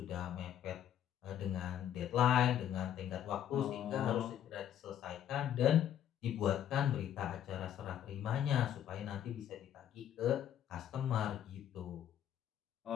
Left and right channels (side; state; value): right; quieter; 10.4 dB